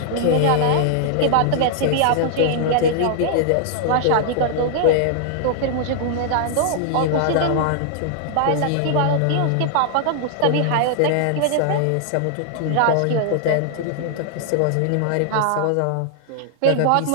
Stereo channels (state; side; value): different; both; correlation -0.01